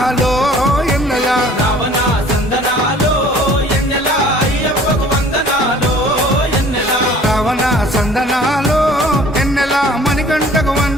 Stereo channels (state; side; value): normal; both; correlation 0.52